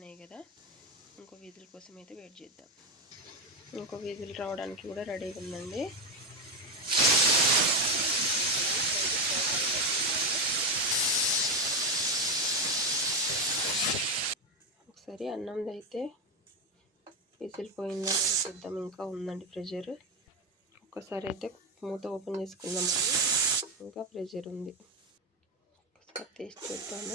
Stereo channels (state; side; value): normal; both; correlation 0.12